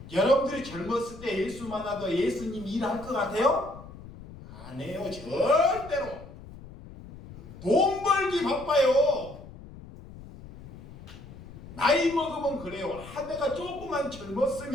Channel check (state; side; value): noise; left; rumble, 16 dB below the sound